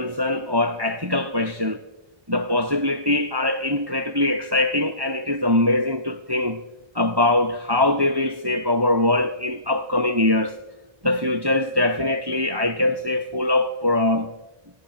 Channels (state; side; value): late; left; 1.1 ms